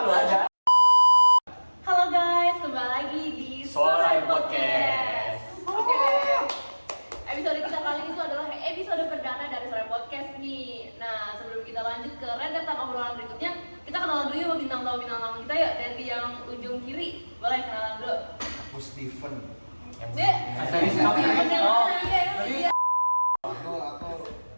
lu aja. Halo guys, kembali lagi di Sonar Podcast. Oke. Episode kita kali ini itu adalah episode perdana dari Sonar Podcast nih. Nah, sebelum kita lanjut ke rentetan obrolan berikutnya, kita kenalan dulu ya sama bintang tamu kita ya, dari yang ujung kiri. Boleh kenalan dulu. Aku Steven. Dek. Aku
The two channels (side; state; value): both; inverted; correlation -1.00